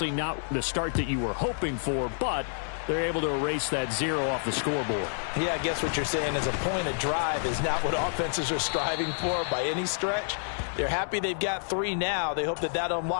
not the start that you were hoping for, but they're able to erase that 0 off the scoreboard. Yeah, I guess what you're saying is a point of drive is not what offenses are striving for by any stretch. They're happy they've got 3 now. They hope that that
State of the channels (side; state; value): right; silent; 59 dB below the other